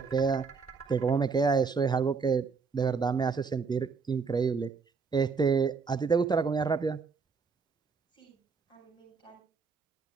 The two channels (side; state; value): left; quieter; 5.1 dB